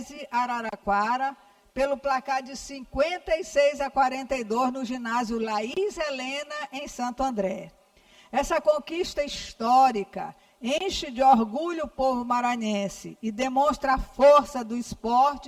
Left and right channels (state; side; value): identical; both; correlation 1.00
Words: Araraquara, pelo placar de 56-42 no ginásio Laís Helena, em Santo André. Essa conquista histórica enche de orgulho o povo maranhense e demonstra a força do